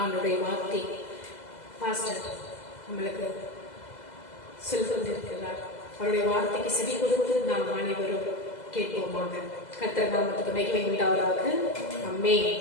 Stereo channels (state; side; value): late; right; 2.0 ms